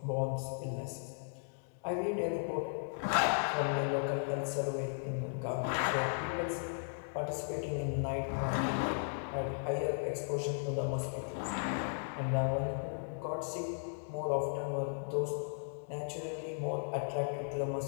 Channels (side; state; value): right; silent; digital silence